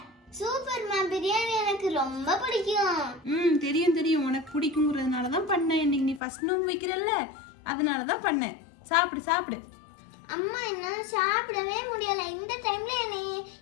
சூப்பர்மா, பிரியாணி எனக்கு ரொம்ப பிடிக்கும். தெரியும் தெரியும், உனக்கு பிடிக்குங்கிறதுனால தான் பண்ணேன். இன்னைக்கு நீ ஃபர்ஸ்ட் நோன்பு வைக்கிறல்ல, அதனால தான் பண்ணேன். சாப்பிடு சாப்பிடு. அம்மா என்னால சாப்பிடவே முடியல. இந்த டைம்ல என்னை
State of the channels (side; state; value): right; drops out; at 6.2 s